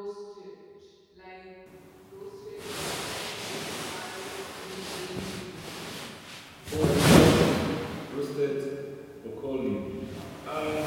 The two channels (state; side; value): identical; both; correlation 1.00